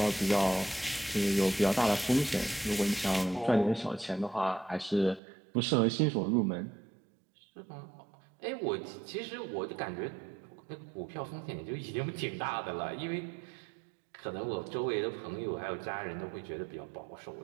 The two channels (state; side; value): drops out; left; at 5.2 s